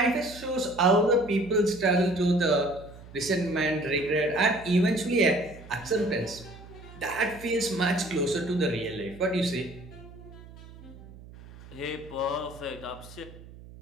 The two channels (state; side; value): noise; right; hum, 18 dB below the sound